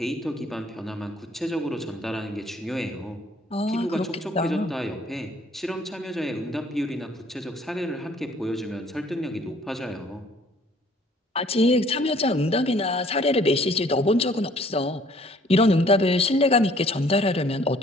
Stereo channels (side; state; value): both; normal; correlation 0.58